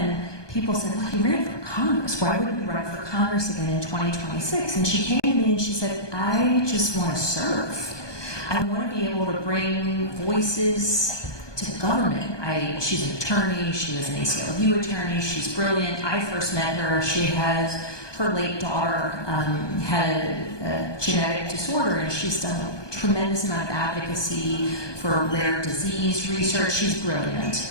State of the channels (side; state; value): right; late; 1.2 ms